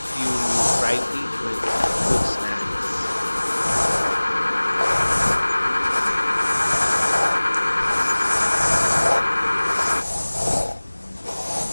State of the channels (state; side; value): inverted; both; correlation -1.00